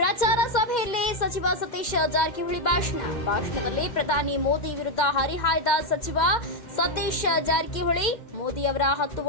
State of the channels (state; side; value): late; right; 2.1 ms